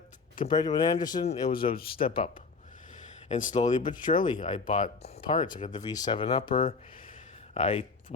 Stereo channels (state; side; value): quieter; right; 4.6 dB